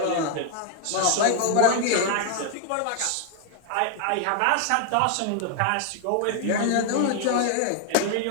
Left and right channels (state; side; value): different; both; correlation 0.00